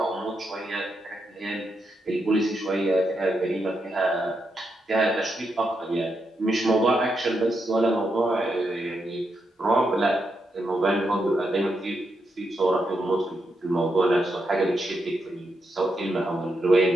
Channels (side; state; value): both; normal; correlation 0.83